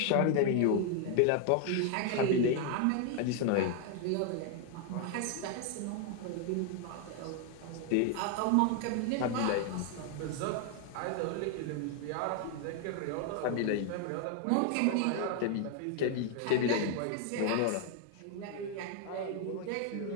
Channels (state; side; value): different; both; correlation 0.01